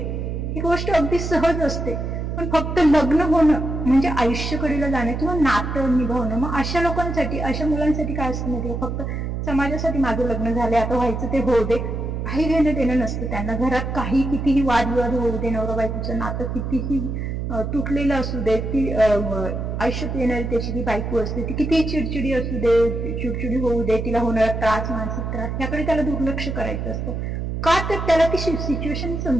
ही गोष्ट अगदी सहज असते, पण फक्त लग्न होणं म्हणजे आयुष्यकडीला जाणं किंवा नातं निभावणं. मग अशा लोकांसाठी, अशा मुलांसाठी काय असतं माहिती, फक्त समाजासाठी माझं लग्न झालंय आता व्हायचं ते होऊ दे, काही घेणं देणं नसतं त्यांना. घरात काही कितीही वादविवाद होऊ दे, नवरा बायकोचं नातं कितीही तुटलेलं असू दे, ती आयुष्यात येणारी त्याची ती बायको असते, ती कितीही चिडचिडी असू दे, चिडचिडी होऊ दे, तिला होणारा त्रास, मानसिक त्रास, याकडे त्याला दुर्लक्ष करायचं असतं. का तर त्याला ती सिच्युएशन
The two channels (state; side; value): noise; right; hum, 3 dB below the sound